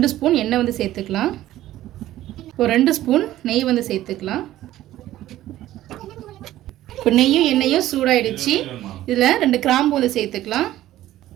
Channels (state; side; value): quieter; left; 14.2 dB